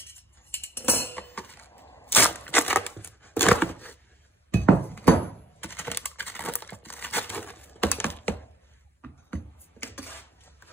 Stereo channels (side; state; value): both; normal; correlation 0.60